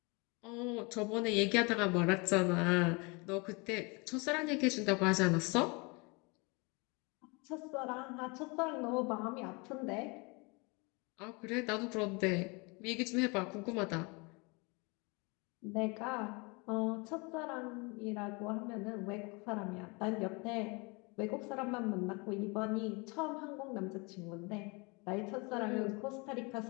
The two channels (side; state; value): right; quieter; 29.3 dB